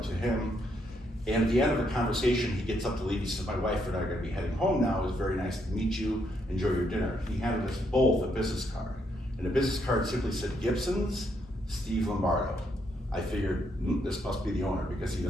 to him, and at the end of the conversation, he gets up to leave. He says, my wife and I are gonna be heading home now. It was very nice to meet you, enjoy your dinner. He handed us both a business card, and the business card simply said, Gibson's, Steve Lombardo. I figured, this must be the owner because he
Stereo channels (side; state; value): both; normal; correlation 0.75